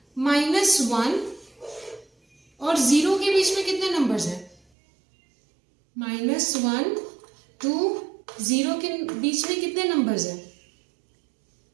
-1 और 0 के बीच में कितने नंबर्स है, -1 2 0 के बीच में कितने नंबर्स है,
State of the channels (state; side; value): drops out; left; at 4.5 s